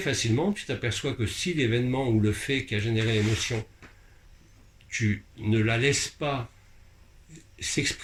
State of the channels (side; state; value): both; identical; correlation 1.00